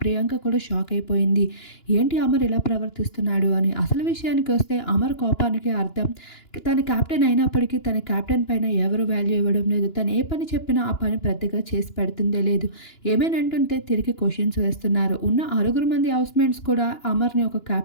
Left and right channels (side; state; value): right; late; 2.9 ms